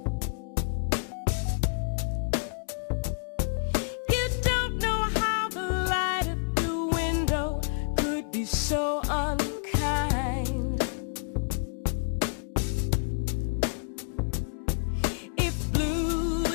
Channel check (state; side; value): silent; right; digital silence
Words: You don't know how the light at the window could be so unkind. If blue